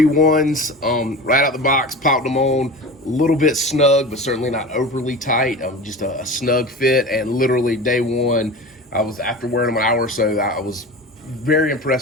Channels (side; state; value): both; normal; correlation 0.32